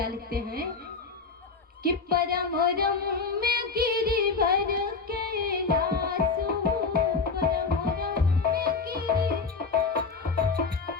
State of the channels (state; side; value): quieter; right; 4.6 dB